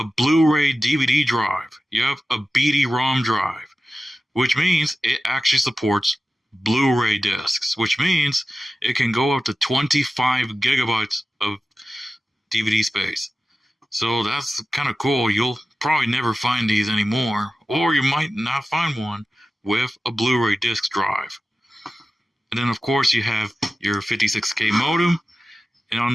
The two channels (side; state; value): both; normal; correlation 0.94